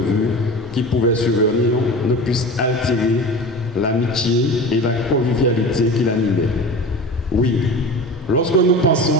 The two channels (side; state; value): both; normal; correlation 0.33